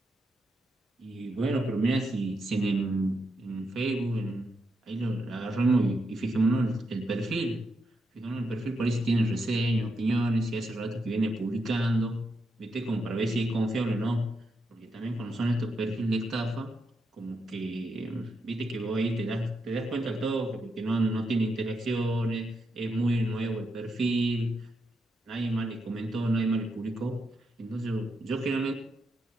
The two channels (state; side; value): normal; both; correlation 0.83